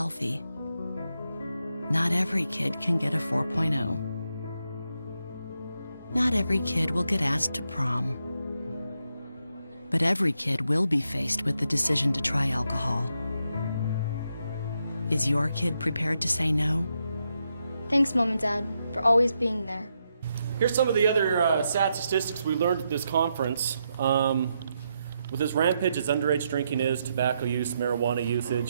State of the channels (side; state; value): both; inverted; correlation -0.82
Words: Not every kid can get a 4.0. Not every kid will get asked to prom. But every kid will be faced with the decision to try alcohol. Is your kid prepared to say no? Thanks, Mom and Dad, for always being there. Here's some of the other sad statistics we learned at this conference. With as rampant as underage drinking is, tobacco use, marijuana